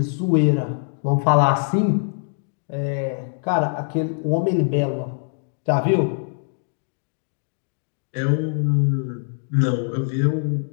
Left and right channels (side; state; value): right; silent; digital silence